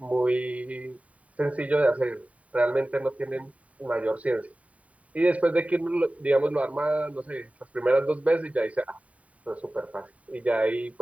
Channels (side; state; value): left; late; 0.068 ms